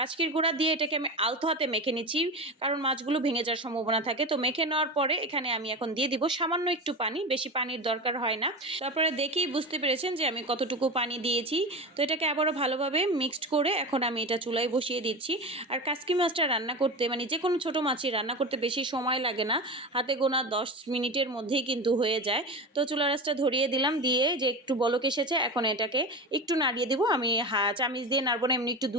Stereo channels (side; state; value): both; normal; correlation 0.25